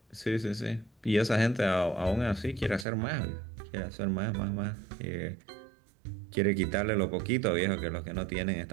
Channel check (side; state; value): left; drops out; at 2.9 s